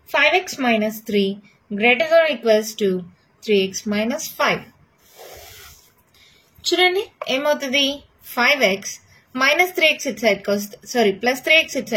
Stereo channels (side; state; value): both; identical; correlation 1.00